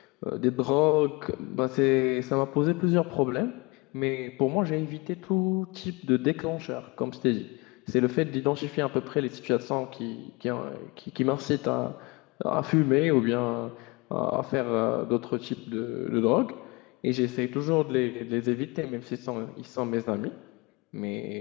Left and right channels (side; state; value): right; quieter; 26.1 dB